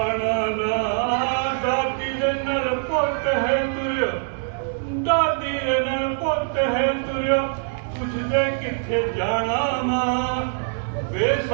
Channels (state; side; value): silent; left; digital silence